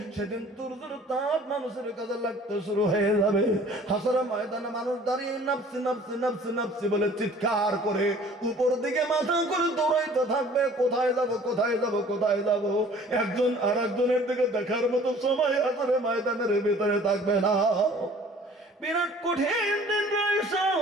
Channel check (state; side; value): normal; both; correlation 0.51